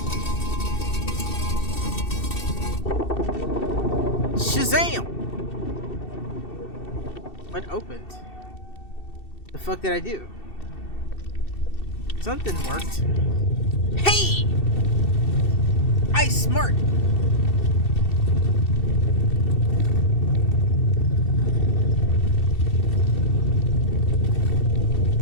Shazam! What opened? The fuck did I do? Something worked. Hey! I smart!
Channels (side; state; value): right; late; 2.7 ms